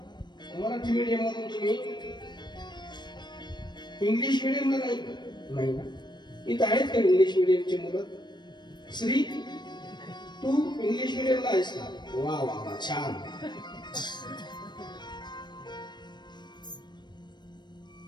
मराठी मीडियम मधून? तुम्ही इंग्लिश मीडियमला नाही ना? इथं आहेत का इंग्लिश मीडियमची मुलं? श्री, तू इंग्लिश मीडियमला आहेस का? वा वा वा, छान.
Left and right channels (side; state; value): right; late; 0.22 ms